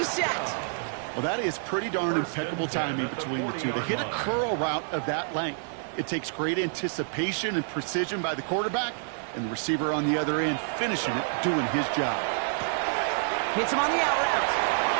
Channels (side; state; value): left; silent; 59 dB below the other